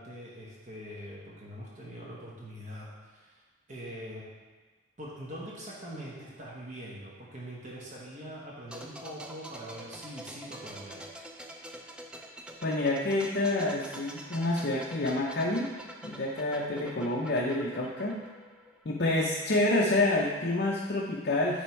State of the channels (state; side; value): normal; both; correlation 0.27